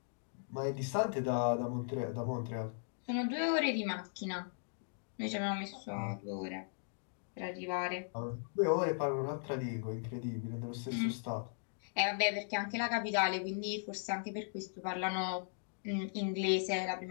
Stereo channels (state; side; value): silent; right; digital silence